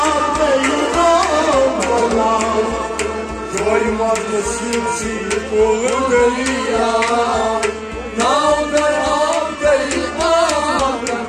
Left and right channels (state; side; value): identical; both; correlation 1.00